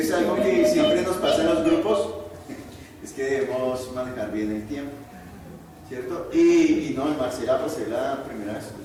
algo que siempre nos pasa en los grupos, es que debemos manejar bien el tiempo, ¿cierto? Y no, Marcela, pues es la primera vez,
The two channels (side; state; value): both; identical; correlation 1.00